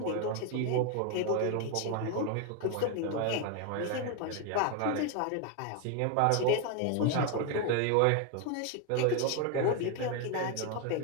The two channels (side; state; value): both; different; correlation 0.01